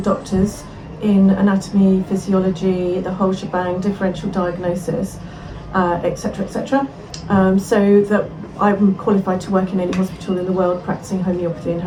in anatomy, physiology, the whole shebang, differential diagnosis, etc., etc. So that I'm qualified to work in any hospital in the world practicing homeopathy and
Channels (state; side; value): identical; both; correlation 1.00